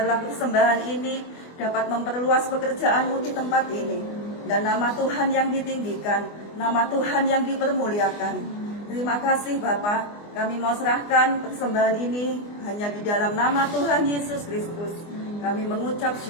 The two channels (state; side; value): late; right; 24 ms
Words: persembahan ini dapat memperluas pekerjaan-Mu di tempat ini, dan nama Tuhan yang ditinggikan, nama Tuhan yang dipermuliakan. Terima kasih Bapa, kami mau serahkan persembahan ini hanya di dalam nama Tuhan Yesus Kristus. Kami mengucap